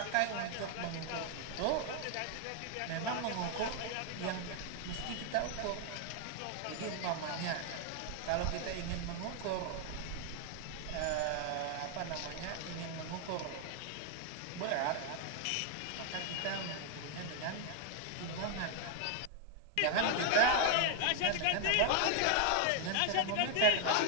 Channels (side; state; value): both; different; correlation 0.00